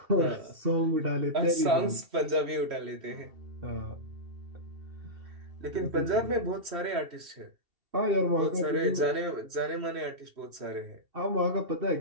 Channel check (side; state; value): left; late; 2.7 ms